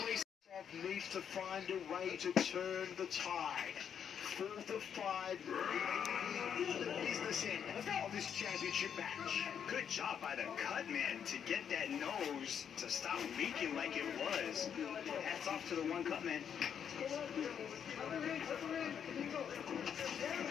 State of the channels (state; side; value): quieter; right; 8.1 dB